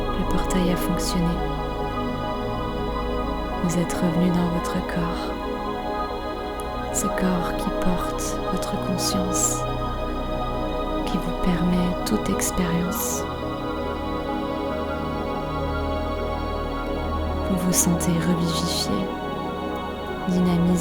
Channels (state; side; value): identical; both; correlation 1.00